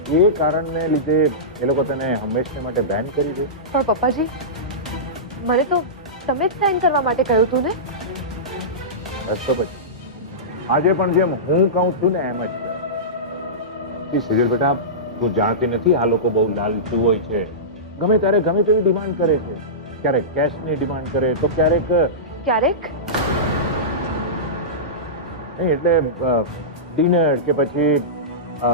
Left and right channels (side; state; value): both; normal; correlation -0.19